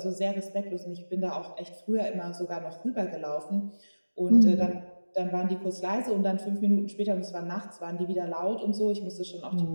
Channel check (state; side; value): inverted; both; correlation -1.00